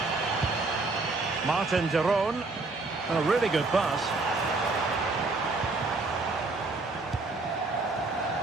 Martin de Roon. A really good pass.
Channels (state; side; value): quieter; left; 3.5 dB